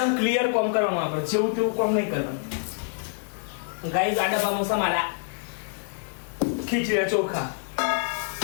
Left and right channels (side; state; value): right; silent; digital silence